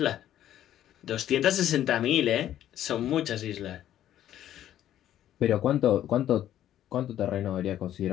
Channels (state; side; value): quieter; right; 11.8 dB